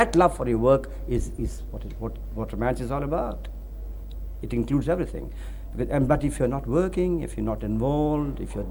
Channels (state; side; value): identical; both; correlation 1.00